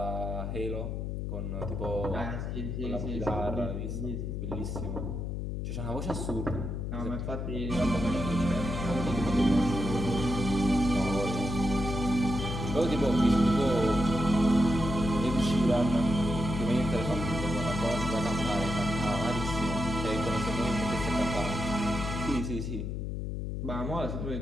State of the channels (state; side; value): noise; left; hum, 3 dB below the sound